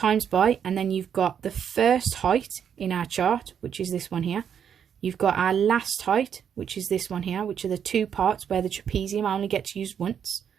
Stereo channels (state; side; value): quieter; left; 8.2 dB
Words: by, and then you've got the first height in our chart, which is this one here. You've got our last height, which is this one here, which are the two parts where the trapezium only gets used once.